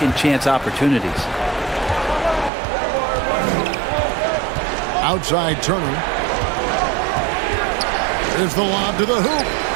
chance opportunities. Outside Turner. There's the lob to the hoop.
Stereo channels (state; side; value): drops out; left; at 2.5 s